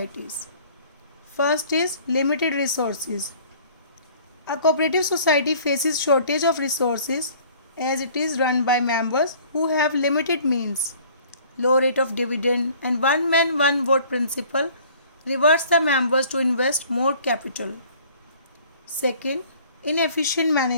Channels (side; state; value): both; inverted; correlation -0.52